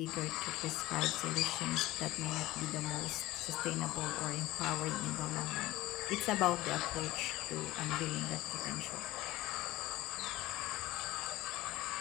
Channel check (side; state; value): right; quieter; 17.5 dB